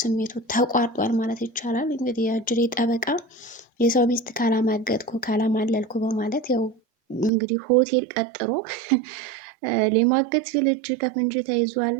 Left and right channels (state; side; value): drops out; left; at 7.3 s